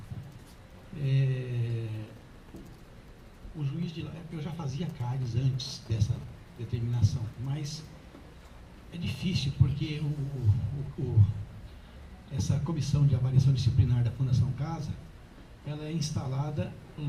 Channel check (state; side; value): identical; both; correlation 1.00